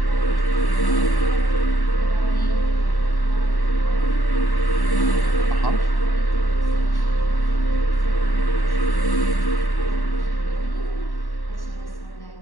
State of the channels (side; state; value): right; late; 1.1 ms